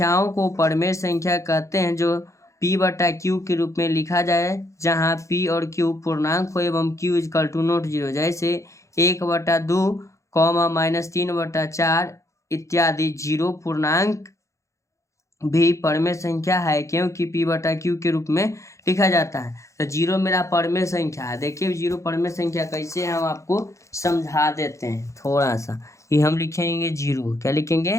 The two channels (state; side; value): late; right; 0.15 ms